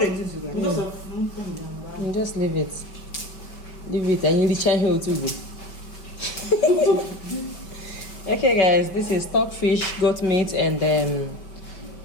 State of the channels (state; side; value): late; right; 5.3 ms